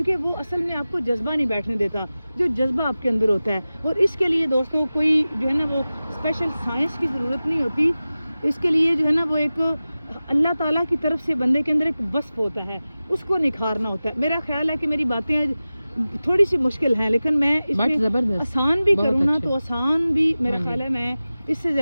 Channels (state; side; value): inverted; both; correlation -0.96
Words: وہ اصل میں آپ کو جذبہ نہیں بیٹھنے دیتا جو جذبہ آپ کے اندر ہوتا ہے، اور اس کے لیے دوستوں کوئی جو ہے نا وہ اسپیشل سائنس کی ضرورت نہیں ہوتی، اس کے لیے جو ہے نا وہ ایک اللہ تعالیٰ کی طرف سے بندے کے اندر ایک وصف ہوتا ہے، اس کو نکھارنا ہوتا ہے۔ میرا خیال ہے کہ میری باتیں تھوڑی سی مشکل ہیں، لیکن میں اس میں آسان بھی کروں نا تو آسان بھی میرا خیال ہے میں اس سے